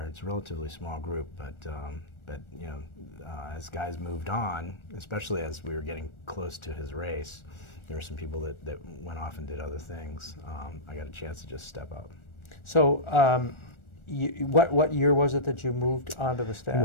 It's a relatively small group, but as guys moved on, especially as we were getting close to his race, there were some people that went off and did other things. I got a chance to just step up. So what year was it that you moved onto the staff? It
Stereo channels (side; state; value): right; late; 1.4 ms